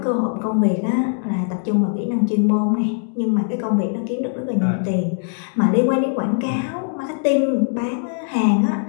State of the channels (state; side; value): silent; right; digital silence